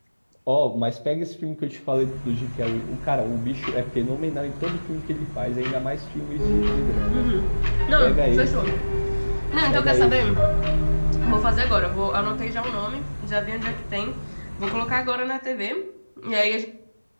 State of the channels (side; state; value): both; inverted; correlation -1.00